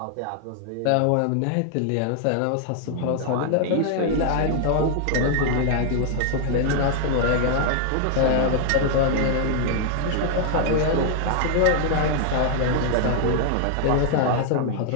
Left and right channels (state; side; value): different; both; correlation 0.00